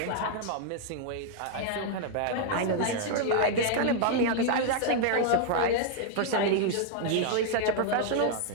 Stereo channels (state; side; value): different; both; correlation -0.01